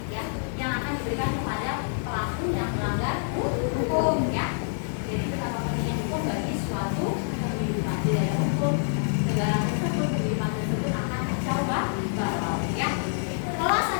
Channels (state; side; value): silent; right; 56 dB below the other